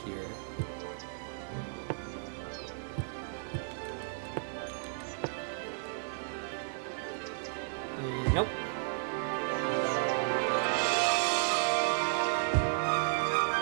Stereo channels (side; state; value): left; silent; 55 dB below the other